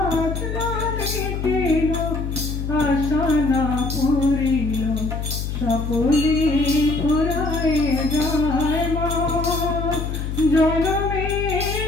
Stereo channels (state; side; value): noise; left; hum, 4 dB below the sound